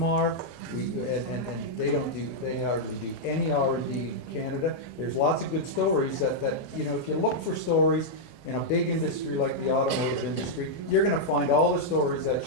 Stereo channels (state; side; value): normal; both; correlation -0.05